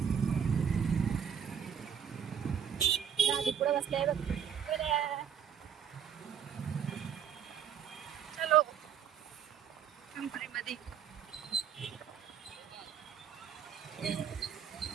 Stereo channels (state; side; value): quieter; left; 8.1 dB